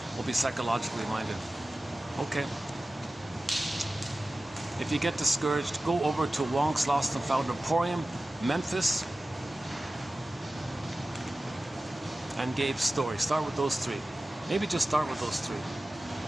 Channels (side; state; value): both; normal; correlation 0.95